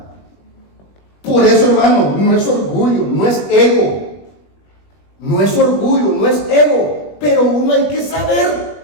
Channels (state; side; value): late; right; 21 ms